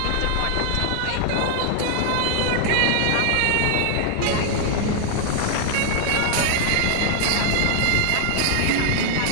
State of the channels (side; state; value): both; different; correlation 0.00